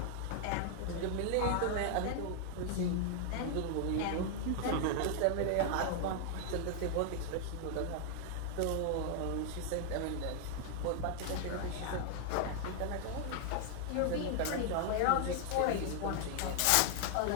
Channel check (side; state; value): both; different; correlation 0.00